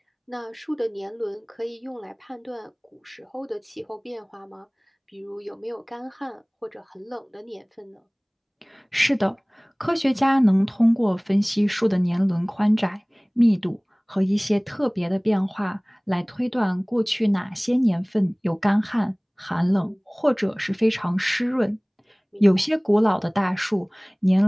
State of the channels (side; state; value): both; identical; correlation 1.00